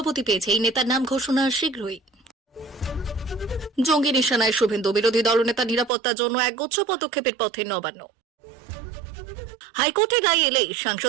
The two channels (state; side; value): drops out; left; at 5.9 s